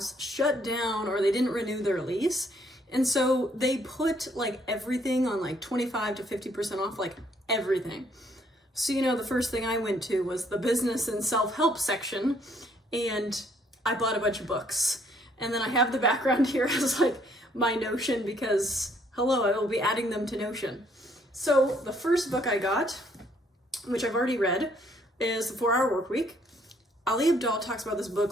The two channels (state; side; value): normal; both; correlation 0.66